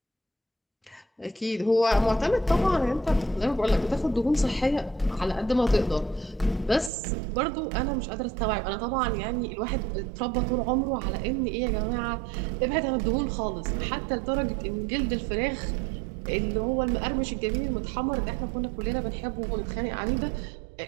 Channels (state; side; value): drops out; left; at 6.9 s